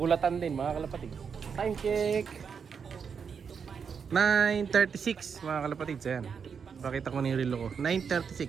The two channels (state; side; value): quieter; left; 6.4 dB